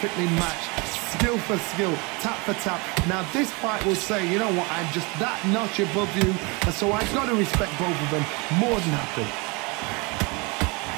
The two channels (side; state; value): left; quieter; 28.5 dB